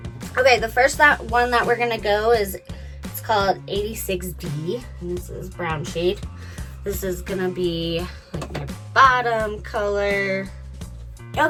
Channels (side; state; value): both; identical; correlation 1.00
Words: Okay, the first one that we're gonna go is, it's called 86D, and this is brown shade. This is gonna be like my bottom color.